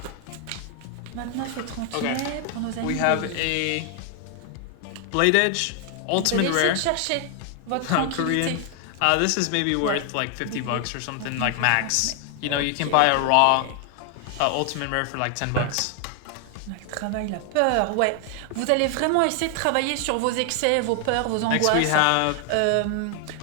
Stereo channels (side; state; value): both; different; correlation 0.00